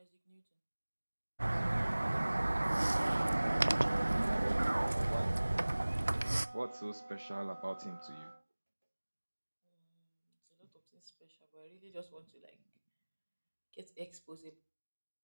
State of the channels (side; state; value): both; inverted; correlation -1.00